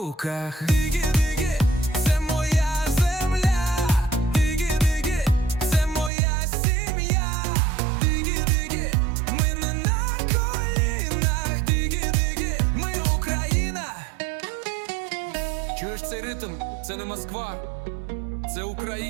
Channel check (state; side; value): drops out; left; at 6.1 s